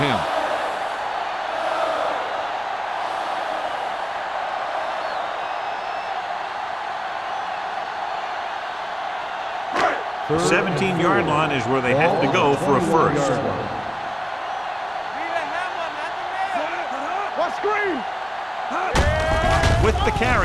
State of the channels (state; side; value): identical; both; correlation 1.00